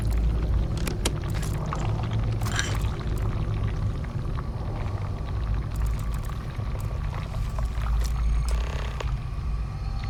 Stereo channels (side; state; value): both; identical; correlation 1.00